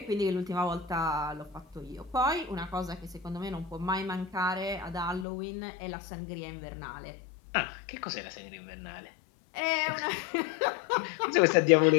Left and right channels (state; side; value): drops out; right; at 5.2 s